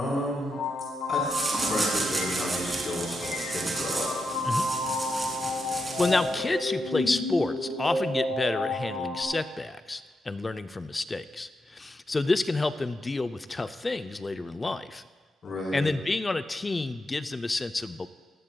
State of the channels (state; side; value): normal; both; correlation 0.85